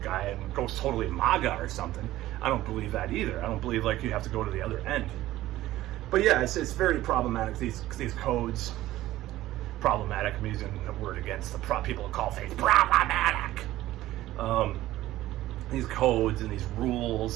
guy and go totally MAGA or something. I don't believe that either. I don't believe like you have to go to the other end. But yeah, it's very problematic, these codes. Problematic, I'm using the word against the people who call things problematic. These codes and these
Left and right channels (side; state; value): left; quieter; 15.4 dB